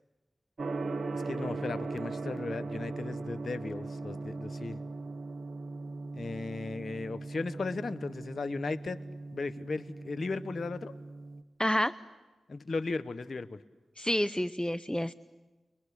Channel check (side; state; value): both; normal; correlation 0.93